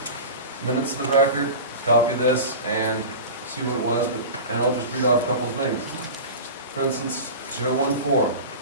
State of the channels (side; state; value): both; inverted; correlation -0.31